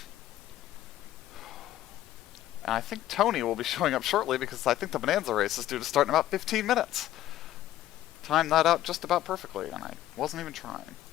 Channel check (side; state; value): right; quieter; 13.7 dB